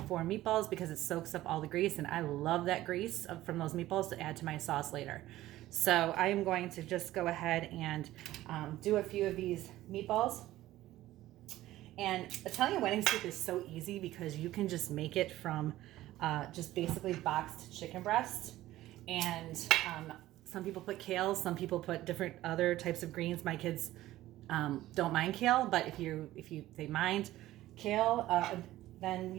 for meatballs because it soaks up all the grease, and I love that grease from those meatballs to add to my sauce later. So I am going to just go ahead and do a few of these meatballs. And Italian wedding soup is so easy because you can just make it from just basically boxed chicken breast. And some people put kale, some people put different other types of greens. My kids don't mind kale, but if they mind kale, then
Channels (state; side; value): quieter; left; 15.4 dB